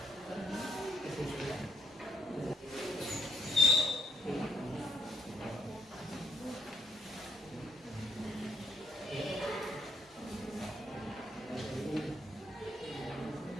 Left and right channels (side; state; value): both; normal; correlation 0.70